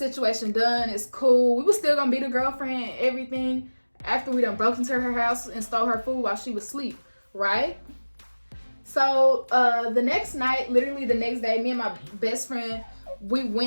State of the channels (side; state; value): both; inverted; correlation -1.00